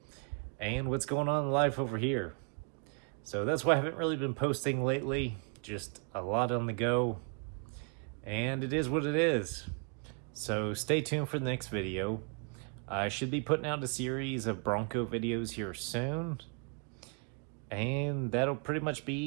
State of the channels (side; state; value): left; quieter; 37.2 dB